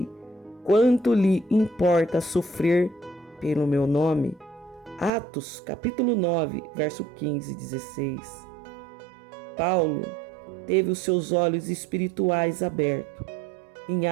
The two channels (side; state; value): left; drops out; at 5.1 s